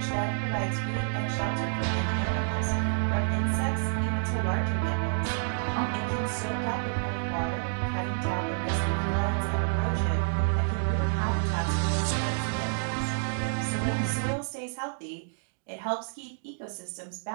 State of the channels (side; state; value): left; silent; digital silence